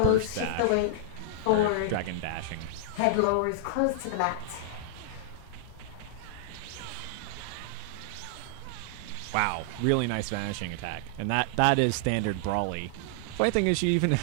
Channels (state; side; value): different; both; correlation -0.01